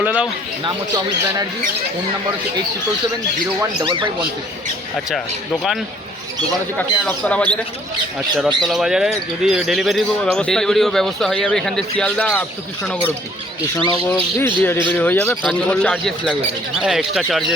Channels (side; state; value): both; normal; correlation 0.59